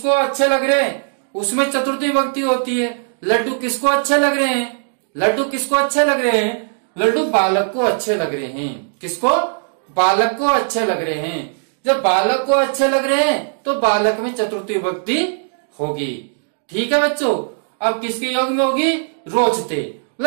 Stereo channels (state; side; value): silent; left; digital silence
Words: अच्छे लग रहे हैं उसमें चतुर्थी विभक्ति होती है। लड्डू किसको अच्छे लग रहे हैं? लड्डू किसको अच्छे लग रहे हैं? लड्डू बालक को अच्छे लग रहे हैं। किसको? बालक को अच्छे लग रहे हैं। जब बालक को अच्छे लग रहे हैं तो बालक में चतुर्थी विभक्ति होगी। ठीक है बच्चों। अब किसके योग में होगी? रोचते,